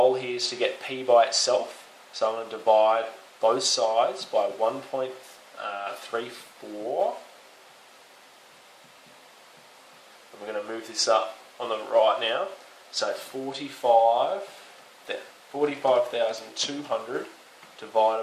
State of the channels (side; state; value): both; identical; correlation 1.00